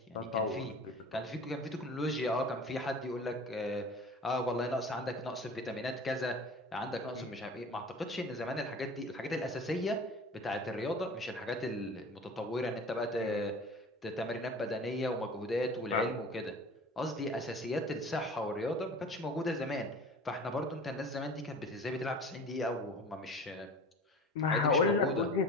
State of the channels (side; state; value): both; normal; correlation 0.40